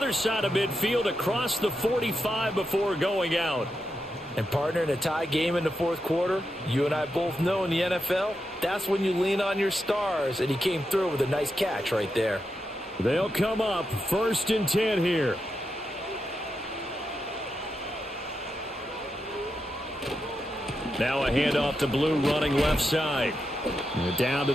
side of midfield across the 45 before going out. And partner, in a tie game in the 4th quarter, you and I both know in the NFL, that's when you lean on your stars. And he came through with a nice catch right there. They'll come up 1st and 10 here. Now a handoff to Blue running left side. Down to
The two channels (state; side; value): normal; both; correlation 0.86